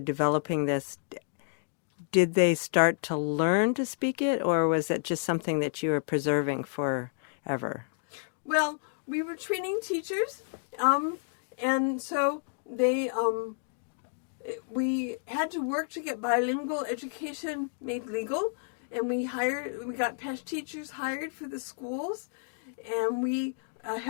this, did they start to learn to speak it, or was it just something that you were preserving forever? Well, we were training teachers, and so we had to work to get bilingual education made legal, and we got Pesh teachers hired for the schools, and we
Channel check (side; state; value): right; silent; digital silence